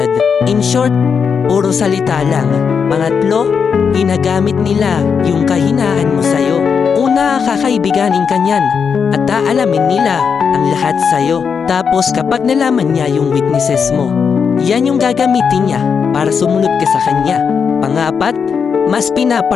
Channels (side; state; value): right; quieter; 6.3 dB